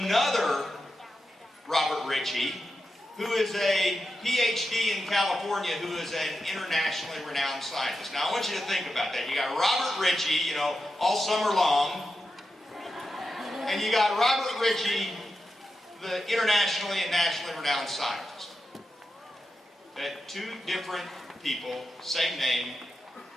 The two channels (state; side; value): normal; both; correlation 0.90